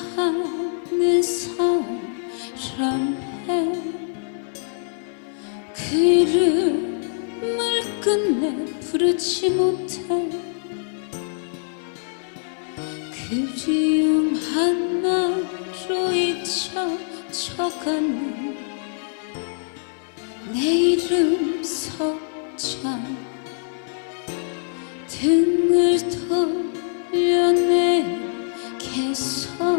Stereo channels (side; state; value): right; silent; digital silence